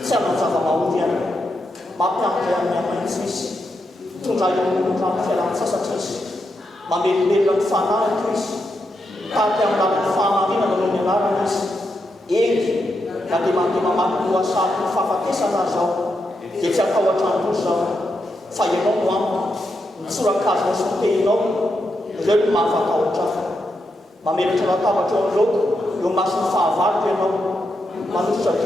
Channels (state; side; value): normal; both; correlation 0.84